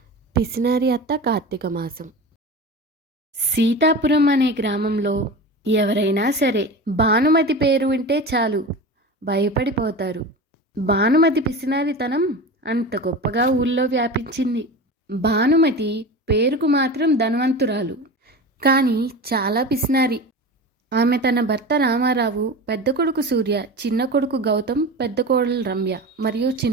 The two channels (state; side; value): normal; both; correlation 0.30